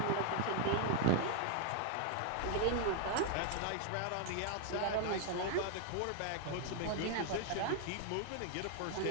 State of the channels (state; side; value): different; both; correlation 0.00